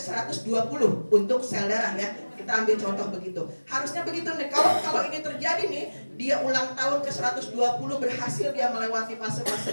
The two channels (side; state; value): both; inverted; correlation -1.00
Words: untuk sel darah ya. Kita ambil contoh begitu. Harusnya begitu nih. Kalau ini terjadi nih, dia ulang tahun ke-120 berhasil dia melewati